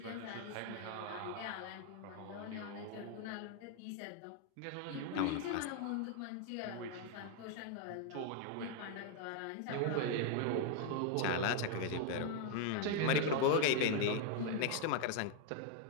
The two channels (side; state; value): both; different; correlation 0.00